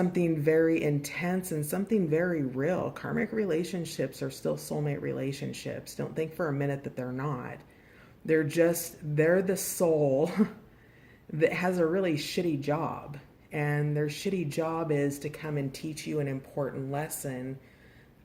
very intense and something very real. Karmic relationships are still soulmate relationships. Don't think for a minute that they're not. They're the soul that has a really shitty job. And their shitty job is to come and teach you an important lesson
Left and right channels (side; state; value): both; identical; correlation 1.00